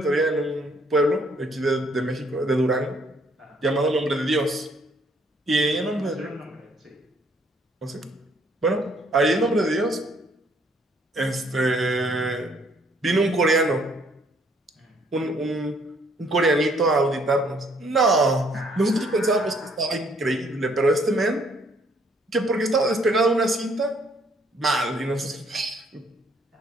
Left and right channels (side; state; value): both; normal; correlation 0.65